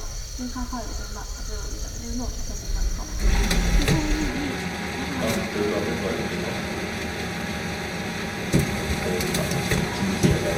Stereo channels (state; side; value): identical; both; correlation 1.00